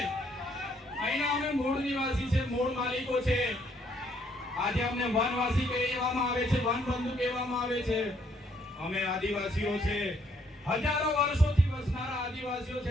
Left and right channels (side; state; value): both; normal; correlation 0.68